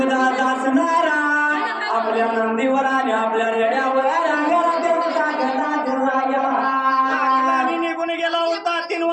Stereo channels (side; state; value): both; identical; correlation 1.00